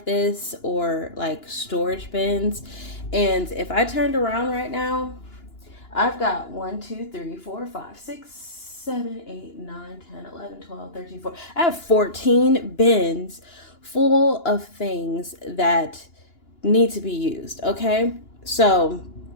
this, or like storage bins. And if I turned around right now, I've got 1, 2, 3, 4, 5, 6, 7, 8, 9, 10, 11, 12, 13, 14. I have 14 bins full of things that need to be used, okay? So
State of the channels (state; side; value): late; right; 2.9 ms